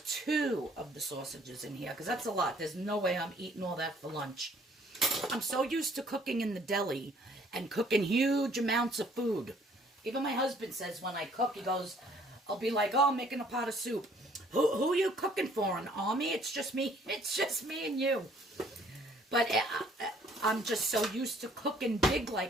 2 of the sausages in here, because that's a lot. There's no way I'm eating all that for lunch. I'm so used to cooking in the deli and cooking huge amounts of food. Even my husband says when I cook, he goes, I'll be like, oh, I'm making a pot of soup. Who are you cooking for, an army? It's just me. It's just me and you. But I'm just so used to cooking big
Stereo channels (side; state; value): both; normal; correlation 0.60